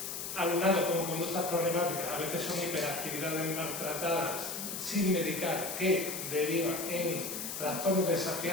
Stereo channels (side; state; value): left; noise; hiss, 5 dB below the sound